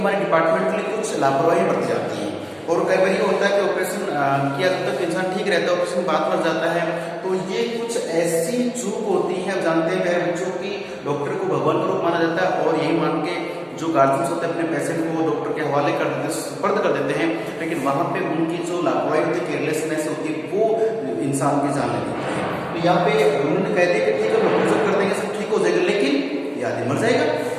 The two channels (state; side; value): identical; both; correlation 1.00